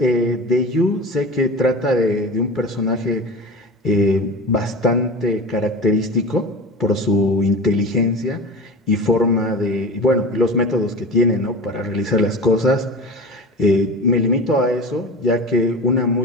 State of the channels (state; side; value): normal; both; correlation 0.31